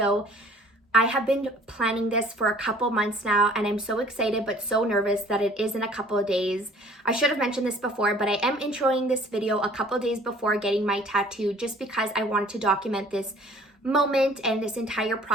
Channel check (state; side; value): normal; both; correlation 0.52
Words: I have been planning this for a couple months now, and I'm so excited but so nervous that it is in a couple of days. I should have mentioned this before, but I am introing this video a couple of days before getting my tattoo just because I wanted to document this moment and this entire